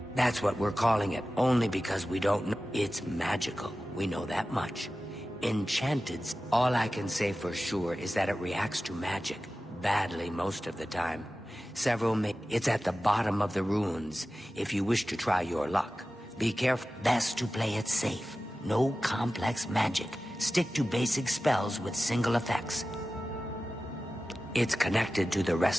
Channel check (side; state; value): both; normal; correlation 0.95